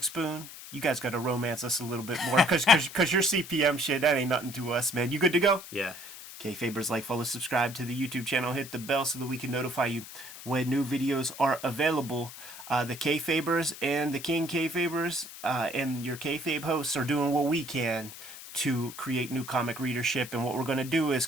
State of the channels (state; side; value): noise; left; hiss, 14 dB below the sound